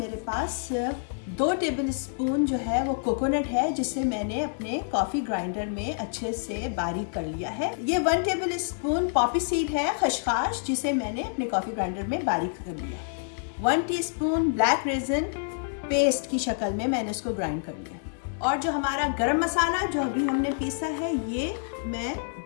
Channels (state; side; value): silent; right; 59 dB below the other